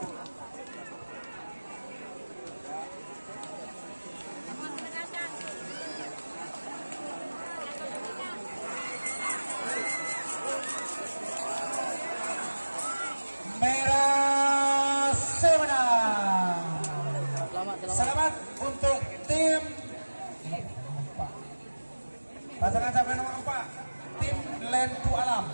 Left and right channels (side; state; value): both; inverted; correlation -1.00